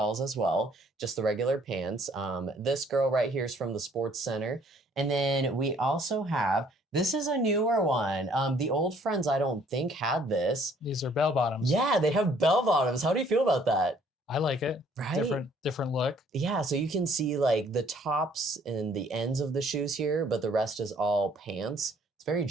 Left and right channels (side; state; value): both; normal; correlation 0.61